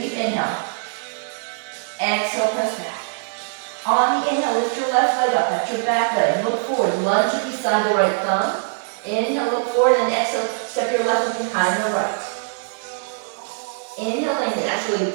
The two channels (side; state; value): left; silent; digital silence